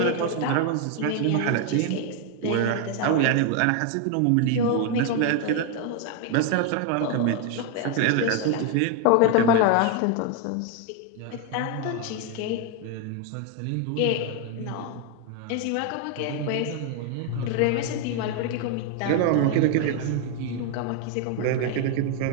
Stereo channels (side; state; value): both; different; correlation 0.01